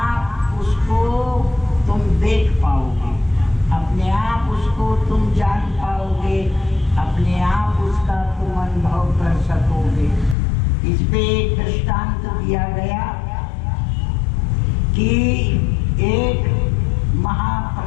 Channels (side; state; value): right; drops out; at 10.4 s